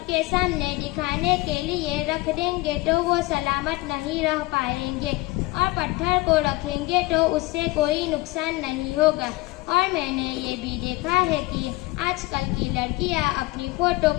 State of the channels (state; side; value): quieter; right; 21.2 dB